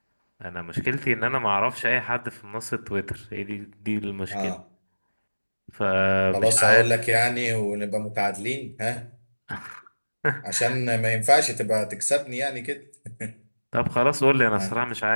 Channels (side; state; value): both; inverted; correlation -1.00